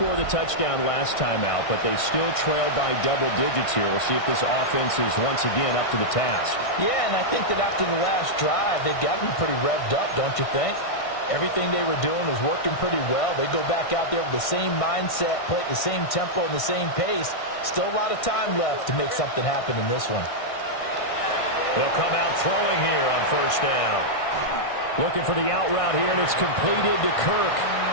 the touchdown last time out, but they still trail by double digits here. We'll see if this offense is once again up to the task. Yeah, and I think that after the last drive, they've got to be pretty revved up, don't you think? Everything they were doing was working pretty well. They go back out there with the same mindset, play at the same tempo and the same pace. Still a lot of time left to make something happen in this one. They'll come out throwing here on first down. Looking for the out route here, and it's completed to Kirk.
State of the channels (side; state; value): right; late; 1.6 ms